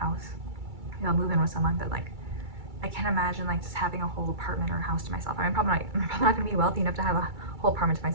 maybe I'll move in with someone, but like I can't imagine like just having a whole apartment or a house to myself. I mean, I'm probably not gonna be wealthy enough to have a whole apartment to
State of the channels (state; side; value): late; left; 2.3 ms